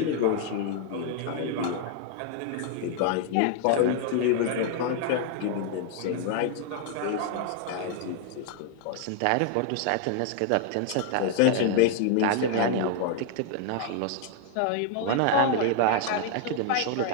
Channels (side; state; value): both; different; correlation 0.00